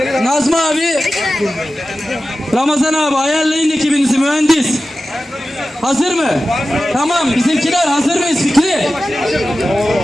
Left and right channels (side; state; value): both; normal; correlation 0.94